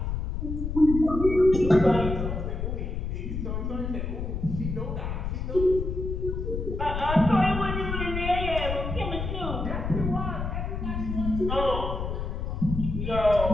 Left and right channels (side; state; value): left; noise; rumble, 3 dB below the sound